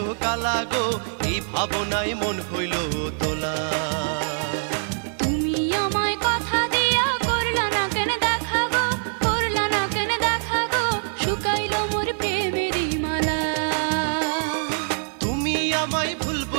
কালা গো, এই ভাবনায় মন হইল তোলা। তুমি আমায় কথা দিয়া করলা না কেন দেখা গো, করলা না কেন দেখা গো, শুকাইলো মোর প্রেমেরই মালা। তুমি আমায় ভুল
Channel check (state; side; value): silent; left; digital silence